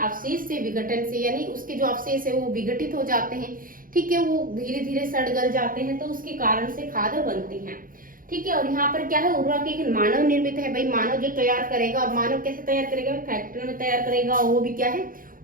से विघटन से, यानी उसके जो अवशेष है वो विघटित हो जाते हैं, ठीक है, वो धीरे धीरे सड़ गल जाते हैं तो उसके कारण से खाद बनती है, ठीक है। और यहाँ पर क्या है, उर्वरक एक मानव निर्मित है। भाई मानव जो तैयार करेगा, और मानव कैसे तैयार करेगा, फैक्ट्री में तैयार करेगा, वो भी क्या है,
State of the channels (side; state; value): left; late; 0.40 ms